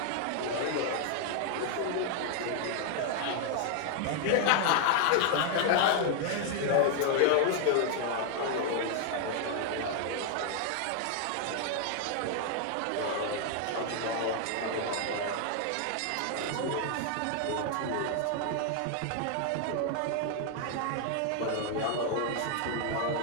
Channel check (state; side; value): different; both; correlation 0.00